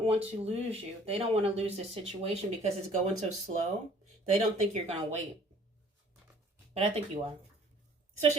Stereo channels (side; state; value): both; normal; correlation 0.55